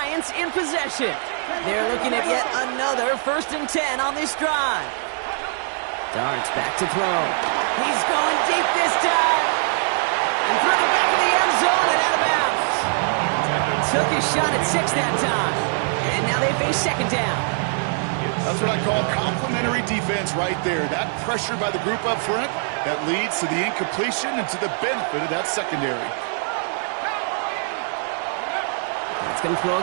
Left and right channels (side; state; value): left; silent; 59 dB below the other